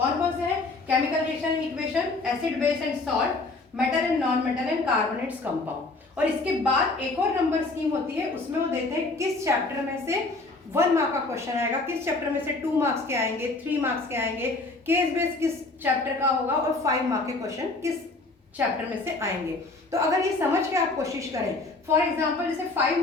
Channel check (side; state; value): right; quieter; 3.3 dB